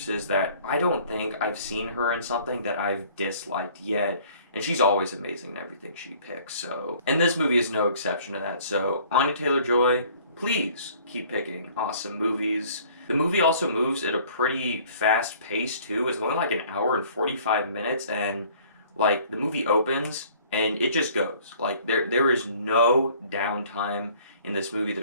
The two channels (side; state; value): both; inverted; correlation -0.54